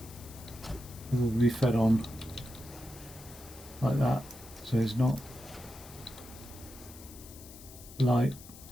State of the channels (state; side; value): noise; left; hiss, 17 dB below the sound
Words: it will be fed on like that. So it's not like,